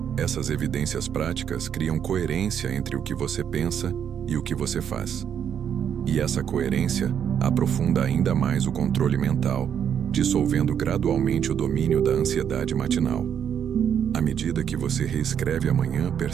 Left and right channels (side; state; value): left; quieter; 8.5 dB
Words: Essas evidências práticas criam coerência entre o que você pensa e o que você faz. E essa coerência aprofunda ainda mais o controle mental, dissolvendo gradualmente o domínio da ansiedade matinal. À medida que você reescreve amanhã,